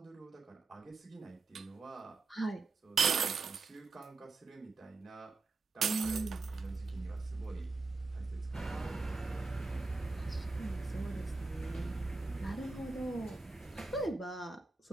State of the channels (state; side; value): quieter; left; 3.7 dB